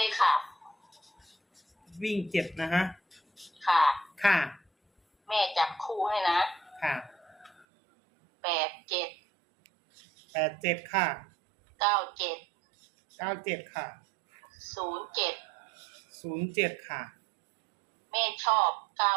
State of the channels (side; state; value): left; drops out; at 7.7 s